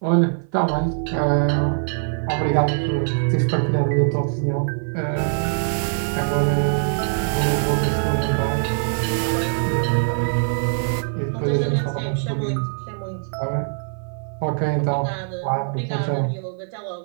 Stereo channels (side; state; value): left; silent; 56 dB below the other